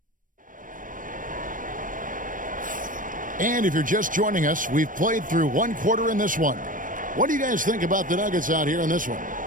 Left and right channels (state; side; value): late; left; 0.39 ms